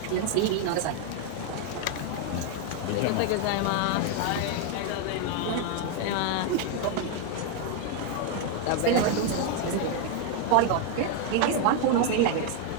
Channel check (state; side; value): different; both; correlation 0.00